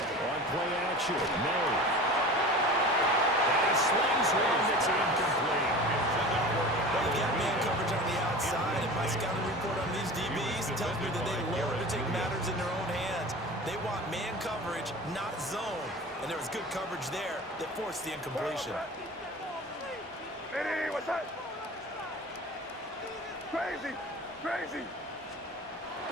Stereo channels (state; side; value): normal; both; correlation 0.36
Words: play action, May. And he slings one that's incomplete. Well, you got man coverage on the outside. outside, and my scouting report on these DBs tells me that they love to take matters in their own hands. They want man coverage, not zone. And there was good coverage there that forced the incompletion. Hey, what's that? Crazy, crazy.